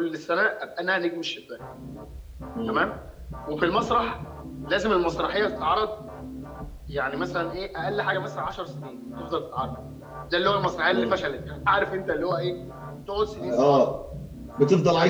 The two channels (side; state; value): both; identical; correlation 1.00